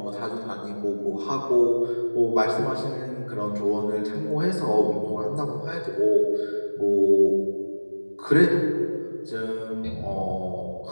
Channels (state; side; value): inverted; both; correlation -1.00